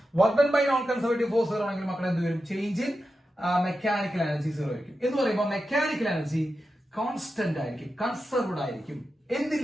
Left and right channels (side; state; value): both; normal; correlation 0.90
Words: Work done by non conservative force 0 ആണെങ്കിൽ മക്കളെ എന്ത് വരും? ചേഞ്ച് ഇൻ മെക്കാനിക്കൽ എനർജി 0 ആയിരിക്കും. എന്ന് പറയുമ്പോൾ മെക്കാനിക്കൽ എനർജി കോൺസ്റ്റന്റ് ആയിരിക്കും, കൺസർവ്ഡ് ആയിരിക്കും.